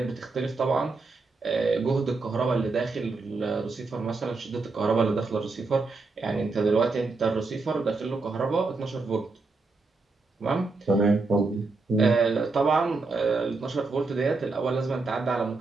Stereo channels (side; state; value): left; quieter; 3.8 dB